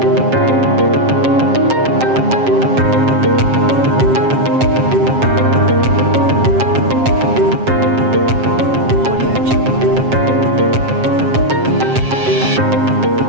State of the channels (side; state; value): left; late; 7.6 ms